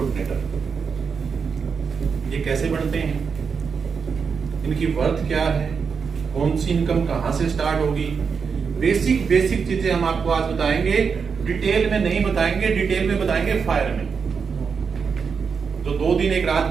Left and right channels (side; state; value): left; quieter; 5.8 dB